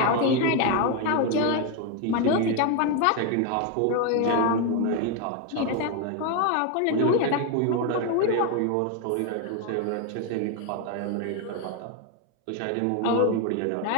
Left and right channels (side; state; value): both; different; correlation 0.01